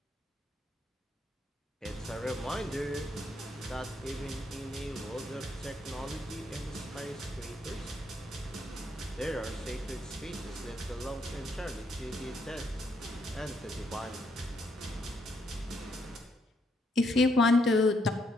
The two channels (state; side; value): normal; both; correlation 0.75